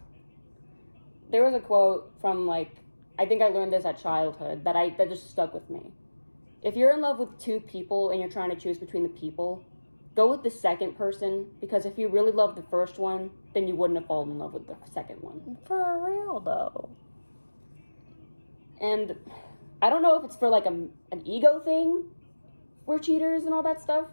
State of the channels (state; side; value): inverted; both; correlation -1.00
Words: There was a quote from I think I learned this at childhood that just stuck with me. If you're in love with two people and you're trying to choose between the people, go with the second person, because if you really love the first one, then you wouldn't have fallen in love with the second one. For real though. And I don't know if it's for, like, an ego thing. We're cheaters and all that stuff.